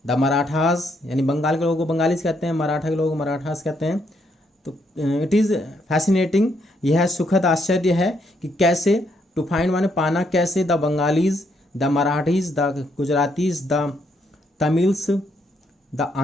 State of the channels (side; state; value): both; normal; correlation 0.74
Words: द मराठास, यानी बंगाल के लोगों को बंगालीज कहते हैं, मराठा के लोगों को मराठास कहते हैं। तो इट इज़ फैसिनेटिंग, यह सुखद आश्चर्य है कि कैसे, टू फाइंड माने पाना, कैसे the Bengalis, the Marathis, the Gujaratis, the Tamils, the